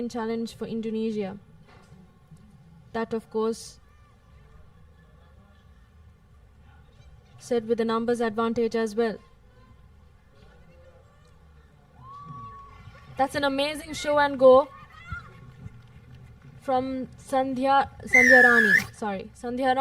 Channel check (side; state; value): both; identical; correlation 1.00